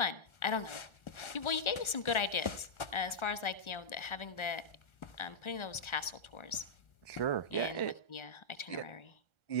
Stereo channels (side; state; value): right; late; 1.4 ms